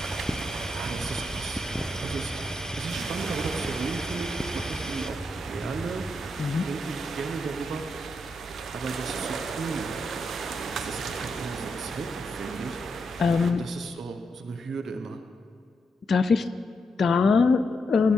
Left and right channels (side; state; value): both; normal; correlation 0.83